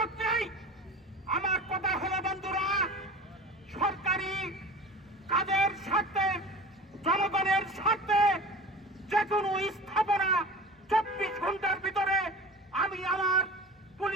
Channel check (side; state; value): both; normal; correlation 0.36